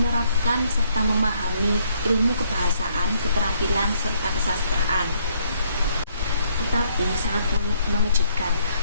serta memahami ilmu kebahasaan, keterampilan, serta kesastraan. Tetapi sangat mengejutkan,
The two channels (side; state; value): both; inverted; correlation -0.68